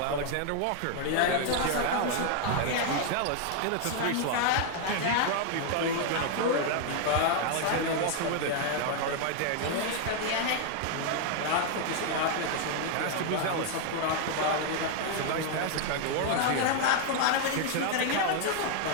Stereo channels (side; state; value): both; different; correlation 0.00